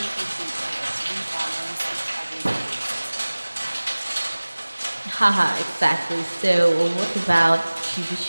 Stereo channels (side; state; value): both; inverted; correlation -1.00